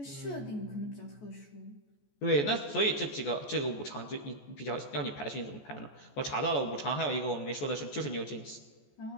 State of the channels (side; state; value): right; late; 14 ms